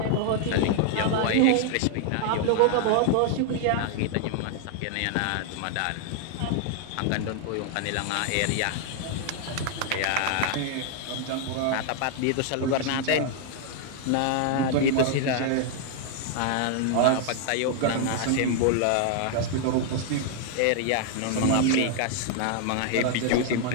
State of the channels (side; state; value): both; different; correlation 0.00